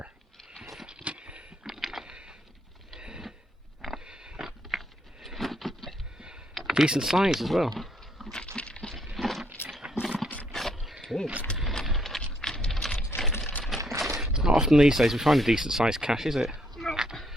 Decent size as well. Good. Not often these days we find a decent sized cache, is it?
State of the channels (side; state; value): both; normal; correlation 0.72